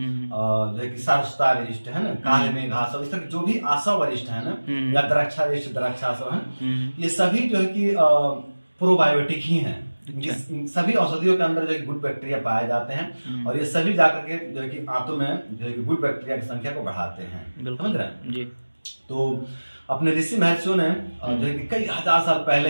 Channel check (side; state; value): both; inverted; correlation -1.00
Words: जो है कि सारस्तारिष्ट, है ना, काले में घासव, इस तरह जो भी आशा वरिष्ठ है ना, या द्राक्षारिष्ट, द्राक्षासव, है ना, ये सभी जो है कि प्रोबायोटिक ही हैं। सभी औषधियों के अंदर जो है गुड बैक्टीरिया पाए जाते हैं और ये सभी जाकर के जो है कि आंतों में जो है कि गुड बैक्टीरिया की संख्या को बढ़ाते हैं, समझ रहे हैं जी। तो अपने ऋषि महर्षियों ने जो है कि कई हजार साल पहले